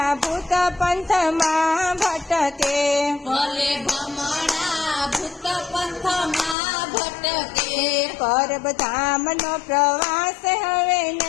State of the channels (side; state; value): right; drops out; at 6.6 s